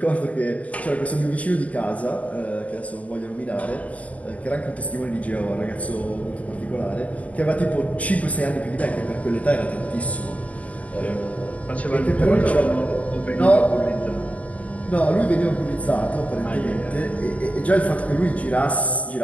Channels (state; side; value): late; right; 0.068 ms